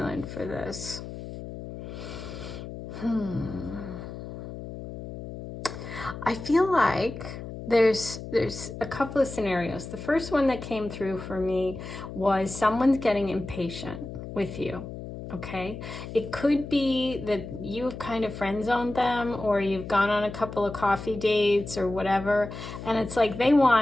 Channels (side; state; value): left; noise; hum, 10 dB below the sound